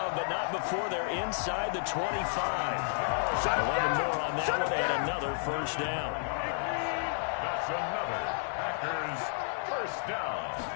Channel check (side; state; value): right; silent; digital silence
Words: but not before they're inside the 25. 11 more on that one, and another first down. That's another Packers first down.